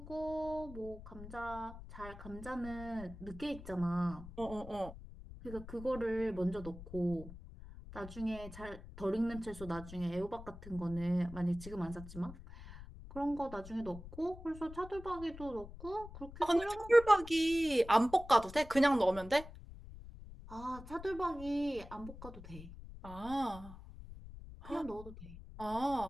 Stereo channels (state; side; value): noise; left; rumble, 14 dB below the sound